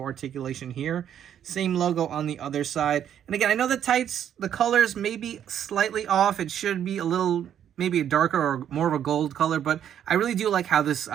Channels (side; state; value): left; quieter; 9.7 dB